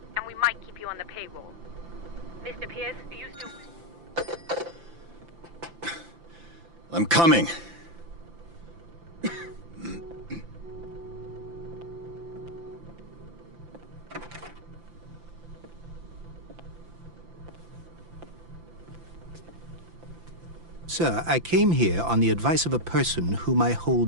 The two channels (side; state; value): left; late; 5.9 ms